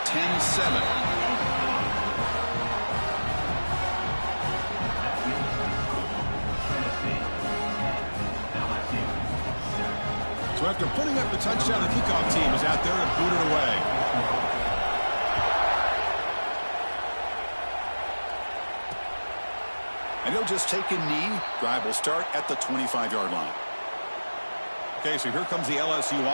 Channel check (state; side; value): inverted; both; correlation -1.00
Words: So after putting up the touchdown, the kickoff team is out there to boot it away. And he'll just take a knee. Drive will start at the 25-yard line. Okay, so here comes the LSU